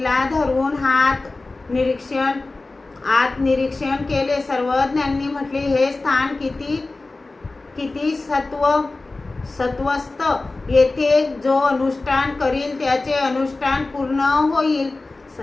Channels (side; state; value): right; quieter; 3.3 dB